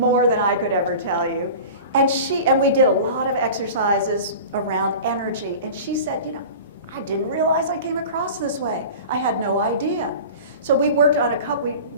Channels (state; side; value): inverted; both; correlation -0.37